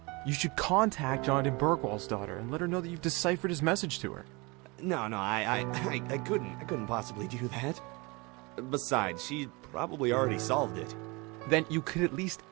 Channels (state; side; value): quieter; left; 26.8 dB